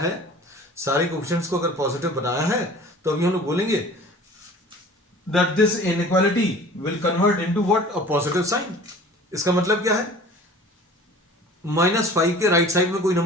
सारे कोएफिशिएंट्स को अगर पॉजिटिव बनाया है, तो अभी हम लोग बोलेंगे that this inequality will convert into what? A positive sign। इसका मतलब क्या है? -5 के राइट साइड में कोई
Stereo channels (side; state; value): both; normal; correlation 0.45